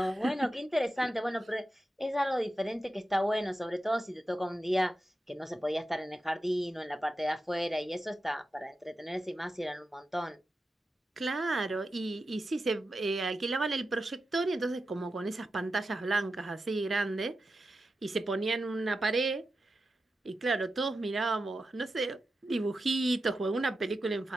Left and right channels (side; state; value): both; normal; correlation 0.91